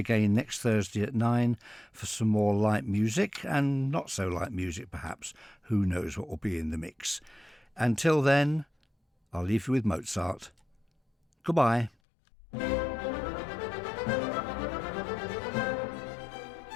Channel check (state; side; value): drops out; right; at 11.9 s